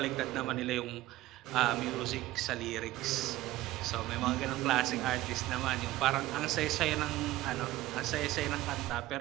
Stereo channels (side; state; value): left; quieter; 16.5 dB